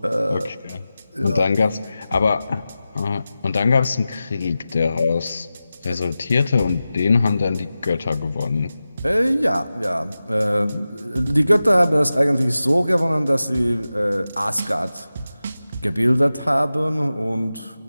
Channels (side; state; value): both; inverted; correlation -0.94